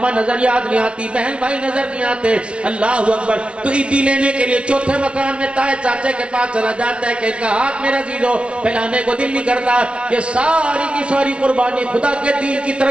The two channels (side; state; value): left; late; 0.059 ms